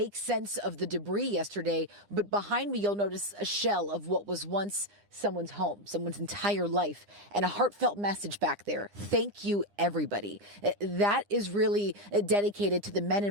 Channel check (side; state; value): left; late; 9.9 ms